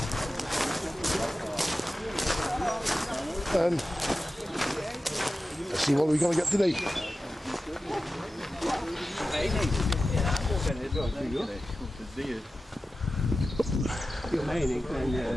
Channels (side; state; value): both; normal; correlation 0.94